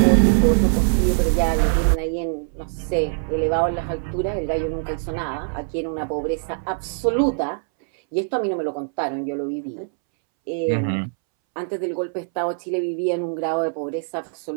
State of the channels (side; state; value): left; silent; 64 dB below the other